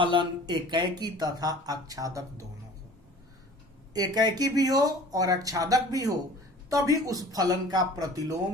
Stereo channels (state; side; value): normal; both; correlation 0.45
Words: एकाएकी तथा आच्छादक दोनों हो। एकाएकी भी हो और आच्छादक भी हो, तभी उस फलन का